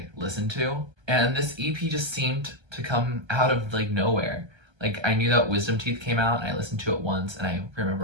listen to. And this EP just seemed to come out of like nowhere. Like, I knew that Wisdom Teeth came out and I listened to it once and I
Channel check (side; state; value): left; late; 1.3 ms